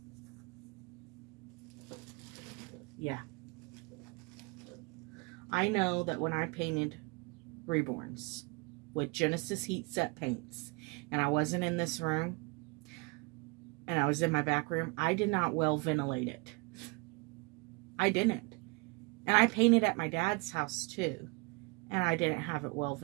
yeah, I know that when I painted Reborns with Genesis heat set paints, and I wasn't in this room, and I was in my back room, I did not well ventilate it. I didn't. And I painted at my dad's house too, and I didn't have it well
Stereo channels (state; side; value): quieter; left; 28.4 dB